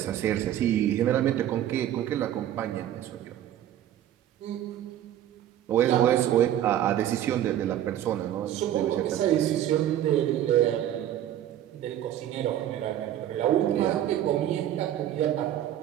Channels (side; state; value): left; quieter; 11.6 dB